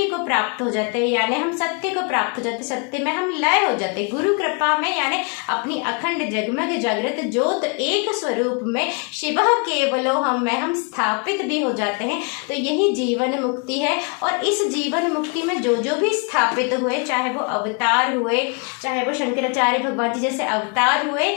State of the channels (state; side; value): quieter; right; 35.2 dB